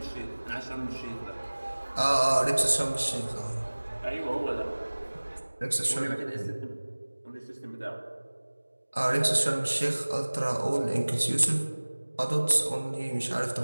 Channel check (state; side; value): inverted; both; correlation -1.00